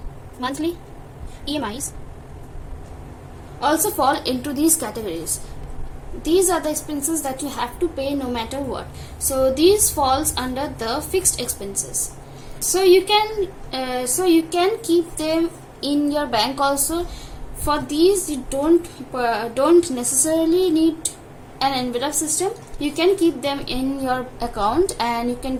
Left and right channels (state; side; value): identical; both; correlation 1.00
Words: monthly EMIs also fall into these categories. These are the expenses that you have to pay no matter what. So these falls under the fixed expenses. So you can keep them in your bank also. For these you don't necessarily need an envelope system. You can keep them in your account and you can